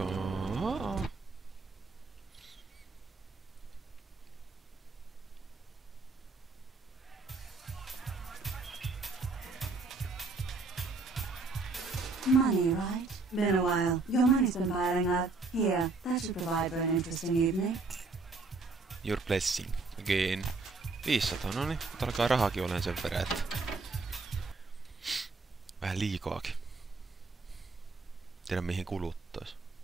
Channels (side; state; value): left; quieter; 3.8 dB